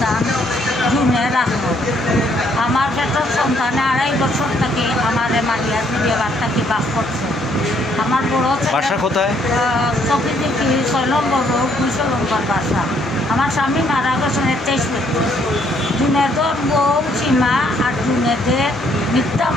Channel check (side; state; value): both; normal; correlation 0.68